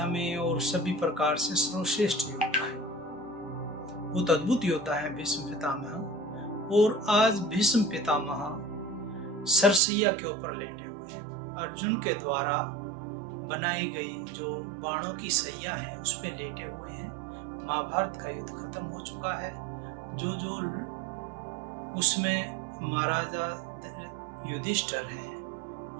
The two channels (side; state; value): left; drops out; at 9.8 s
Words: में और सभी प्रकार से सर्वश्रेष्ठ योद्धा है। बहुत अद्भुत योद्धा है भीष्म पितामह। और आज भीष्म पितामह सरसैया के ऊपर लेटे हुए हैं। अर्जुन के द्वारा बनाई गई जो बाणों की सैया है उस पे लेटे हुए हैं। महाभारत का युद्ध खत्म हो चुका है। जो उसमें महाराजा युधिष्ठिर हैं